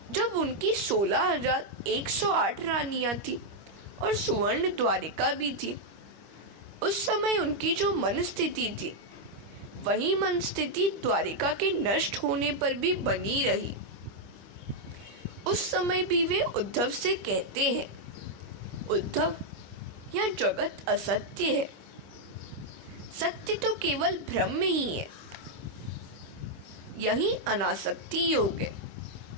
जब उनकी 16,108 रानियां थी और सुवर्ण द्वारिका भी थी, उस समय उनकी जो मन स्थिति थी वही मन स्थिति द्वारिका के नष्ट होने पर भी बनी रही। उस समय भी वे उद्धव से कहते हैं, उद्धव, यह जगत असत्य है। सत्य तो केवल भ्रम ही है। यही अनासक्ति योग है।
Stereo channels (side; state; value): left; late; 25 ms